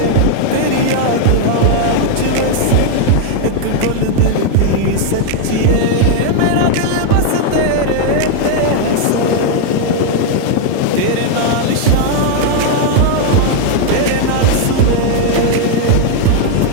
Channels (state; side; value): different; both; correlation 0.00